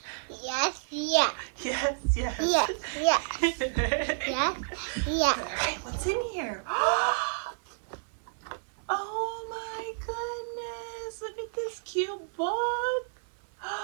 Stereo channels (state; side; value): silent; left; 58 dB below the other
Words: Yes, yes. Yes, yes. Yes, yes. Yes, yes. All right, what's in here? Oh my goodness, look at this cute book.